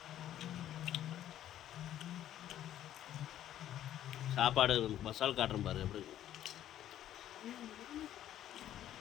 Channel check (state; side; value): quieter; right; 11.8 dB